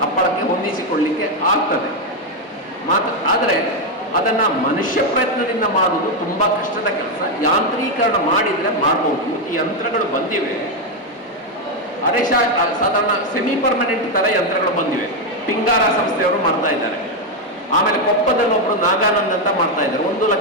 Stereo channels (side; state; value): both; normal; correlation 0.05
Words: ಹಪ್ಪಳಕ್ಕೆ ಹೊಂದಿಸಿಕೊಳ್ಳಿಕ್ಕೆ ಆಗ್ತದೆ ಆದರೆ ಅದನ್ನು ಮನುಷ್ಯ ಪ್ರಯತ್ನದಿಂದ ಮಾಡುವುದು ತುಂಬ ಕಷ್ಟದ ಕೆಲಸ. ಯಾಂತ್ರೀಕರಣ ಮಾಡಿದರೆ ಮಾಡ್ಬೋದು. ಈ ಯಂತ್ರಗಳು ಬಂದಿವೆ, ಸಾಧಾರಣ ಸೆಮಿ ಪರ್ಮನೆಂಟ್ ಥರ ಯಂತ್ರಗಳು ಬಂದಿವೆ. ಪಿಂಗಾರ ಸಂಸ್ಥೆಯವರು ಮಾಡ್ತಾ ಇದ್ದಾರೆ. ಆಮೇಲೆ ಕೊಪ್ಪದಲ್ಲಿ ಒಬ್ಬರು ನಾಗಾನಂದ್ ಅಂತ ಮಾಡ್ತಾ ಇದ್ದಾರೆ. 1